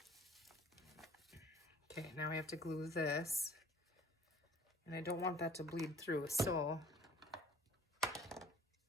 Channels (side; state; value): both; normal; correlation 0.51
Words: Okay, now we have to glue this. And I don't want that to bleed through, so I'm